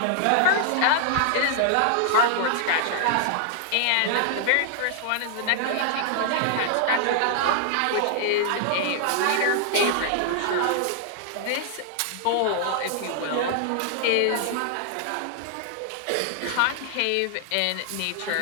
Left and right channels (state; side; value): different; both; correlation 0.00